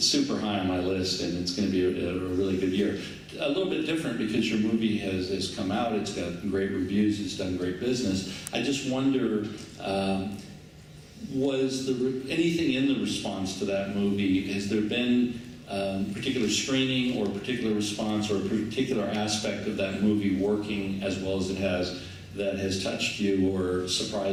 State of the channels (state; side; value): identical; both; correlation 1.00